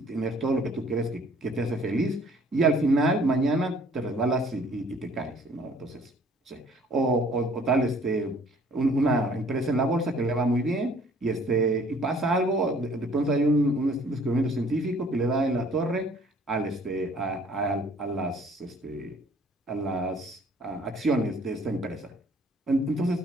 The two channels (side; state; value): both; normal; correlation 0.57